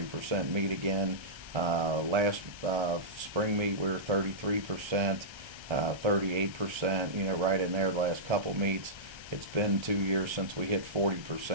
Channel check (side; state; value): left; late; 1.3 ms